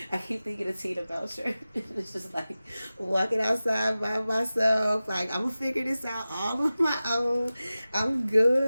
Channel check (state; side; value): inverted; both; correlation -0.96